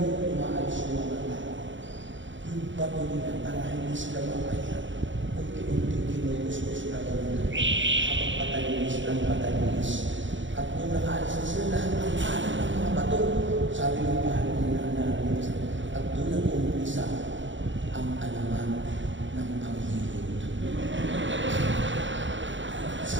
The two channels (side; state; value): left; late; 0.55 ms